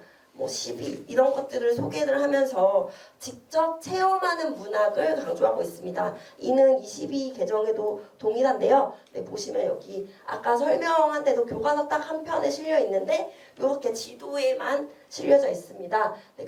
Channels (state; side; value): identical; both; correlation 1.00